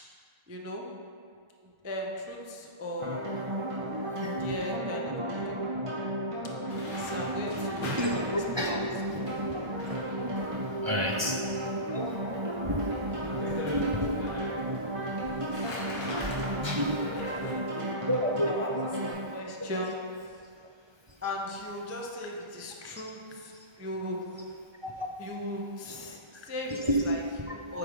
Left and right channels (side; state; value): left; late; 1.2 ms